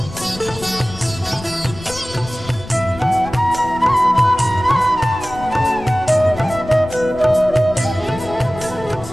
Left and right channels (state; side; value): noise; left; rumble, 15 dB below the sound